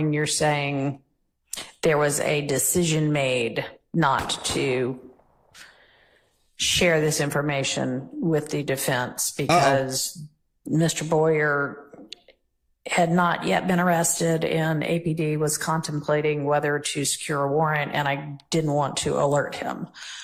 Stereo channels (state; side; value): identical; both; correlation 1.00